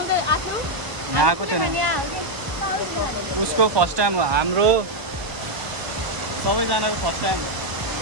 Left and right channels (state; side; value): late; left; 1.0 ms